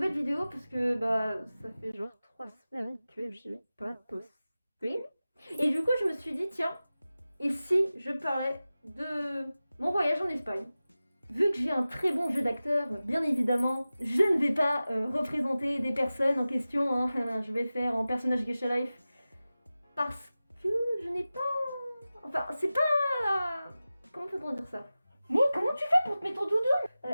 vidéo parce que ça fait genre 3 semaines que j'ai pas posté. Et du coup je me suis dit tiens, et si je parlais de mon voyage en Espagne. Vu que j'ai un très bon jeu d'acteur, bien évidemment, je ne vais pas représenter des personnes en question, hein. Je vais faire en personnage Geisha Life. Parce que je n'ai pas... Enfin, c'est pas... Comment peut-on dire ça? Mais comment tu fais pour te mettre ton doudou?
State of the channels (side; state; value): both; inverted; correlation -0.96